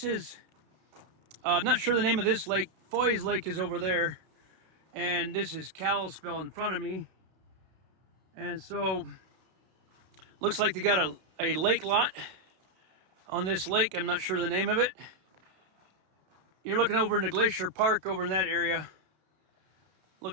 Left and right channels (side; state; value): left; late; 32 ms